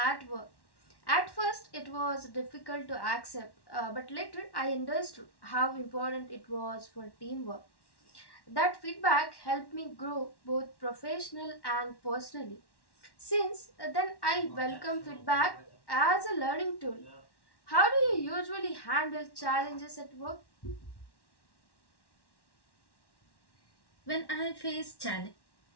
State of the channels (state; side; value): late; right; 1.1 ms